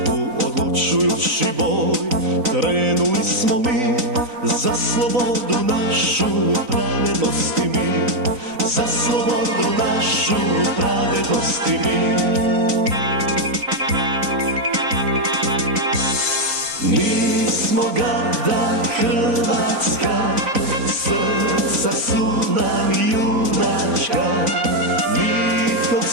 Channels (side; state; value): left; late; 3.9 ms